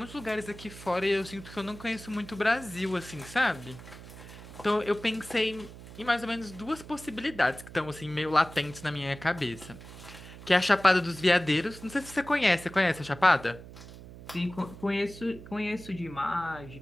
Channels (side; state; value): right; noise; hum, 16 dB below the sound